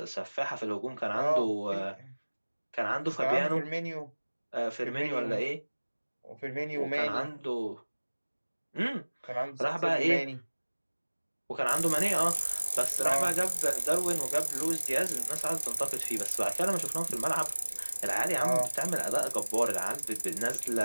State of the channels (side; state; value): both; inverted; correlation -1.00